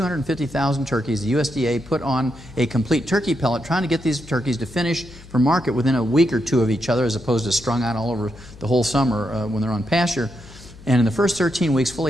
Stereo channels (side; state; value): left; noise; hum, 19 dB below the sound